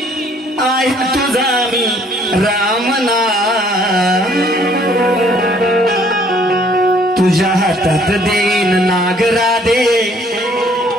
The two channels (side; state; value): both; normal; correlation 0.61